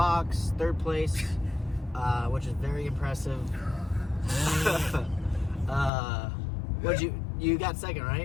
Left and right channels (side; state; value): right; drops out; at 5.9 s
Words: 3rd place, which is very impressive. You got 2nd,